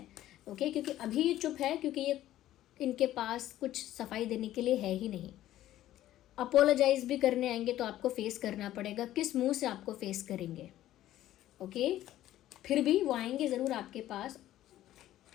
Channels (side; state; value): right; quieter; 13.7 dB